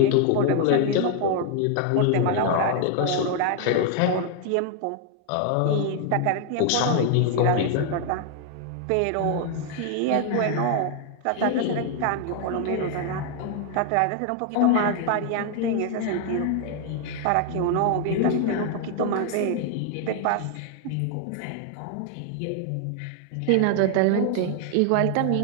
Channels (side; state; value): both; different; correlation 0.00